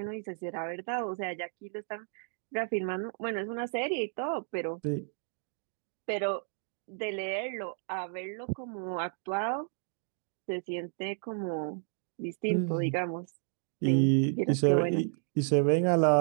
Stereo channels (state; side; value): silent; left; 56 dB below the other